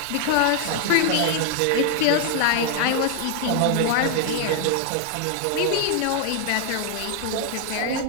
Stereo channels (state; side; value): different; both; correlation 0.00